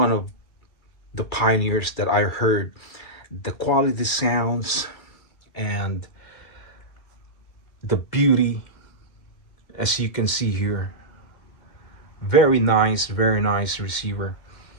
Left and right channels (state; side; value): late; right; 2.3 ms